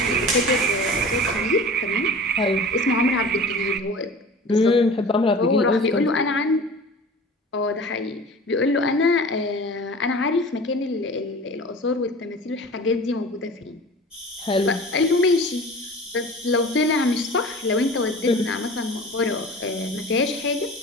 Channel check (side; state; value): both; normal; correlation 0.39